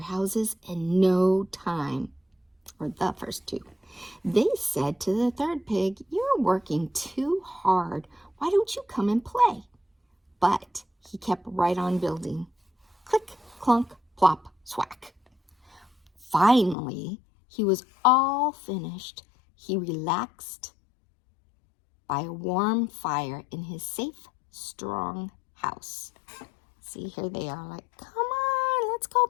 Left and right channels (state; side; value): drops out; right; at 16.8 s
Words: houses in no time. Or the first two. They said to the third pig, "You're working too hard. Why don't you come and play?" But he kept right on building. Click, clunk, plop, swack. Finally, he was all finished. He relaxed by a warm fire in his safe, strong house. See, here they are like, "Come on, let's go